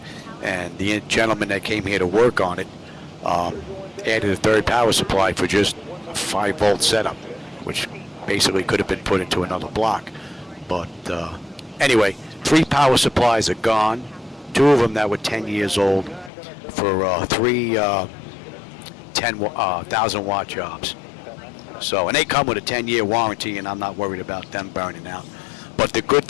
and the gentleman that came here to work on it added a third power supply for just a 5-volt setup, which basically could have been put into another block. But anyway, 3 power supplies are gone. 2 of them that were 10 years old for 3 10,000 watt jobs. So, and they come with a 10-year warranty, and I'm not worried about them burning out. But the good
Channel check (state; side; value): drops out; right; at 16.3 s